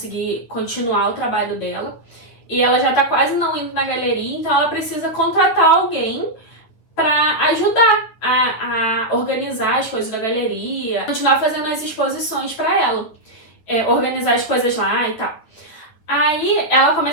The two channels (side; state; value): right; late; 9.5 ms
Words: continuar o trabalho dela. E ela já tá quase não indo na galeria, então ela precisa contratar alguém pra ajudar a organizar as coisas da galeria, continuar fazendo as exposições pra ela, organizar as coisas lá e tal. Aí ela